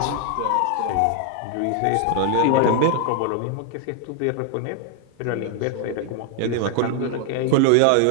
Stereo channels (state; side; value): different; both; correlation 0.00